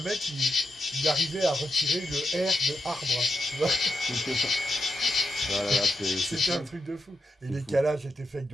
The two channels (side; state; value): both; normal; correlation 0.85